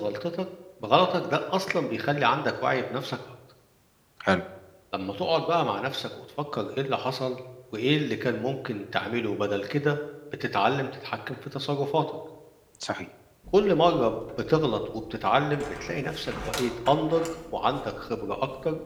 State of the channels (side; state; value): both; identical; correlation 1.00